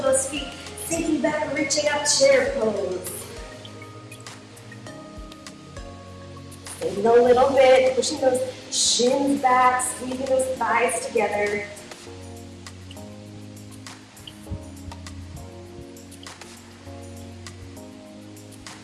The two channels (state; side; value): identical; both; correlation 1.00